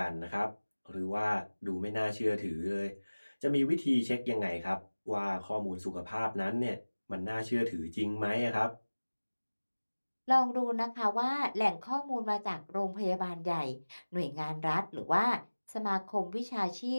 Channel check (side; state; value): both; inverted; correlation -1.00